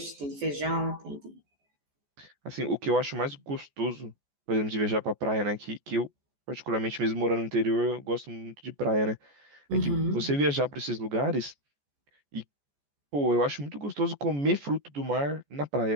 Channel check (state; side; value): late; left; 14 ms